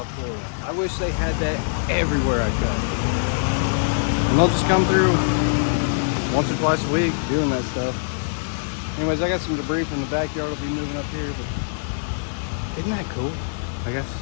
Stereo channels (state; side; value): silent; right; 63 dB below the other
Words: Florida. I wish they had that everywhere I cut. And they'll just come through once or twice a week doing that stuff. Anyways, I got some debris from the backyard. I'll be moving up here, but isn't that cool? I guess